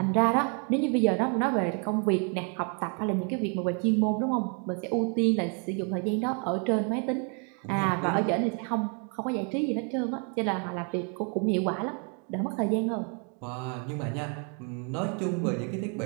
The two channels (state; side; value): quieter; left; 39.1 dB